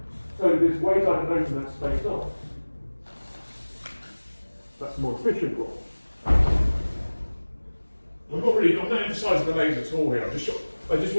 So there's ways I can open that space up. That's the more efficient roll. I'm not emphasising the legs at all here. I just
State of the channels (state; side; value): inverted; both; correlation -1.00